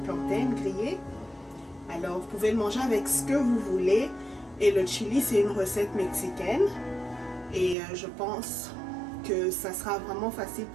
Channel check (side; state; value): left; drops out; at 7.8 s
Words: plantaines grillées. Alors, vous pouvez le manger avec ce que vous voulez. Et le chili, c'est une recette mexicaine. Et je pense que ça sera vraiment facile